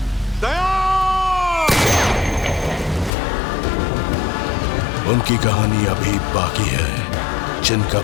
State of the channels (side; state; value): right; drops out; at 3.1 s